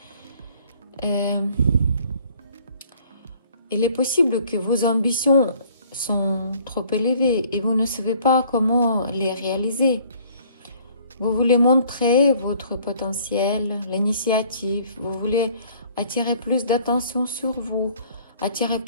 Il est possible que vos ambitions sont trop élevées et vous ne savez pas comment les réaliser. Vous voulez montrer votre potentiel, l'initiative, vous voulez attirer plus d'attention sur vous, attirer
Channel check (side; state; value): both; inverted; correlation -0.57